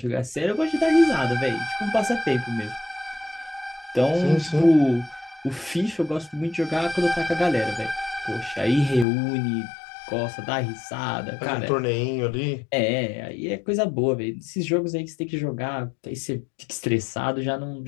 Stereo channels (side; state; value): right; drops out; at 9.1 s